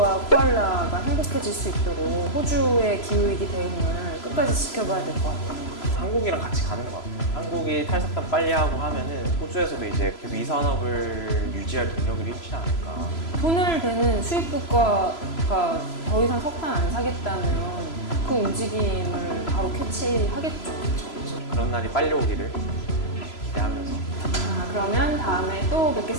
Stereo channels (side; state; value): right; late; 3.0 ms